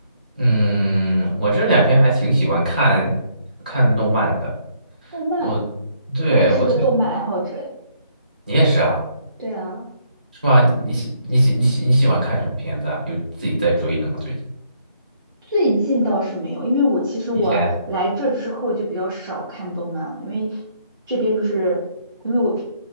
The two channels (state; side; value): inverted; both; correlation -0.70